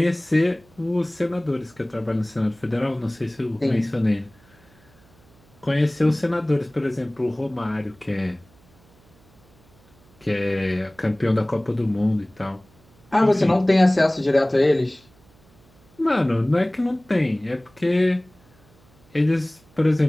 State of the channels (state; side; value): noise; right; hum, 30 dB below the sound